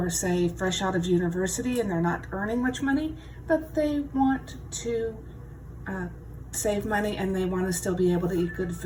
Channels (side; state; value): both; identical; correlation 1.00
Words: say, fresh out of university and they're not earning much money, but they want to save money and they want to still be able to eat good